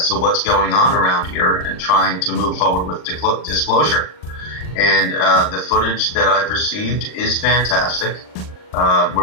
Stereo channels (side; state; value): right; late; 39 ms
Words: to what's going on around here and trying to move forward with disclosure. And the footage that I've received is fantastic.